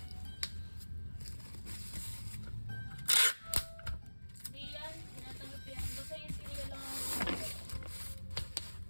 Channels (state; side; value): inverted; both; correlation -1.00